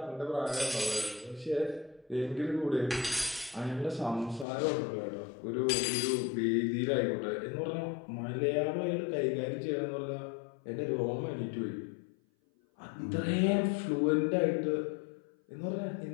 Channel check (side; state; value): right; drops out; at 4.5 s